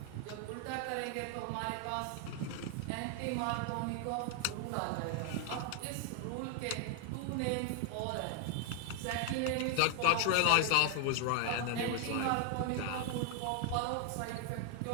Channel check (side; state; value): both; different; correlation 0.00